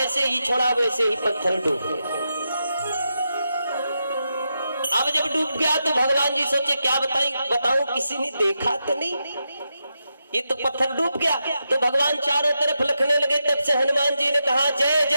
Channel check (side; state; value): both; inverted; correlation -0.86